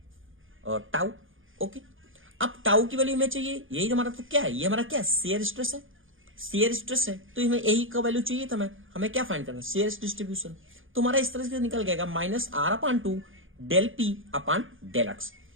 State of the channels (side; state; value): left; late; 0.58 ms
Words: और टाउ। ओके, अब टाउ की वैल्यू हमें चाहिए, यही हमारा तो क्या है, ये हमारा क्या है, शेयर स्ट्रेस है, शेयर स्ट्रेस है, तो हमें यही का वैल्यू चाहिए था। हमें क्या फाइंड करना है, शेयर डिस्ट्रीब्यूशन। तो हमारा इस तरह से निकल गएगा minus R upon two del P upon del X.